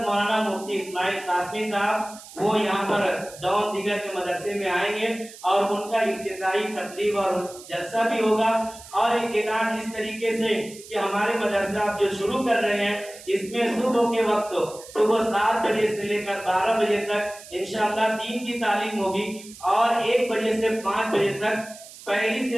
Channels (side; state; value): right; noise; hiss, 17 dB below the sound